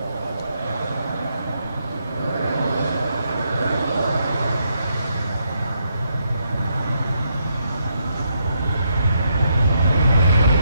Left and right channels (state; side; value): inverted; both; correlation -0.78